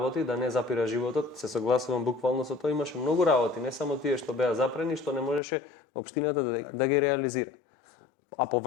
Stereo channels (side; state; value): right; drops out; at 5.4 s